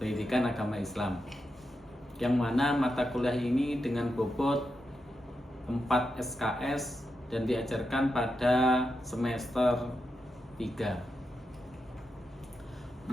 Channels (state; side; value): normal; both; correlation 0.87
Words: agama Islam, yang mana mata kuliah ini dengan bobot 4 SKS dan diajarkan pada semester 3.